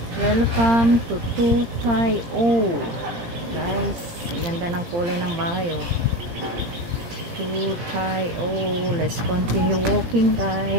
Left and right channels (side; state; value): left; late; 17 ms